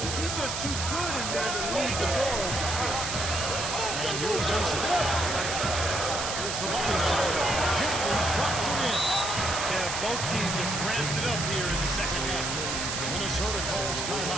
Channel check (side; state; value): right; noise; hiss, 3 dB below the sound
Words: He's just too good in there to leave the door open. And here's Mason. Here's the body. Gently drops it in. Yeah, both teams have ramped it up here in the second half. Minnesota calls